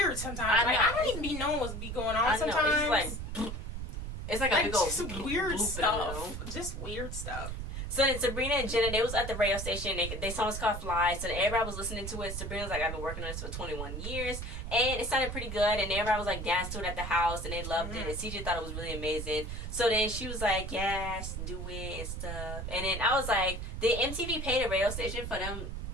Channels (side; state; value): right; noise; rumble, 6 dB below the sound